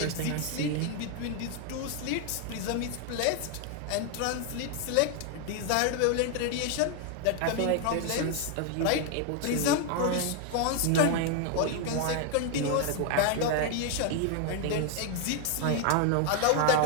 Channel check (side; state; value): both; different; correlation 0.01